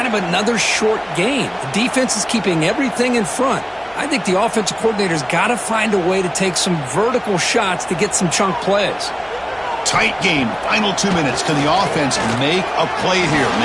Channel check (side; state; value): both; identical; correlation 1.00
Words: of another short gain. The defense is keeping everything in front. I think the offensive coordinator's got to find a way to take some vertical shots to get some chunk plays. Tight game. Final 2 minutes. Can the offense make a play here? And